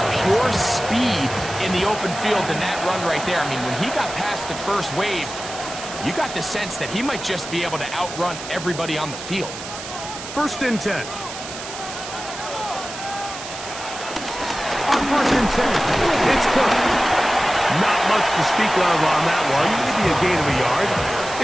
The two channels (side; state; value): right; noise; hiss, 10 dB below the sound